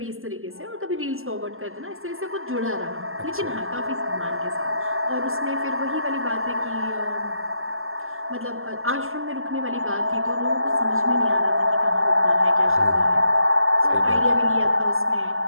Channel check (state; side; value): late; left; 0.61 ms